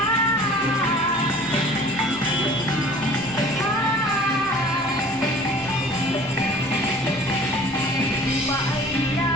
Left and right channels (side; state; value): both; normal; correlation 0.47